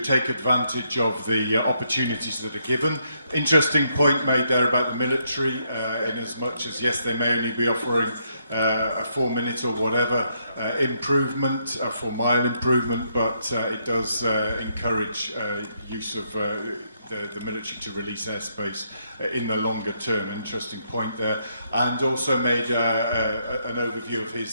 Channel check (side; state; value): both; inverted; correlation -0.76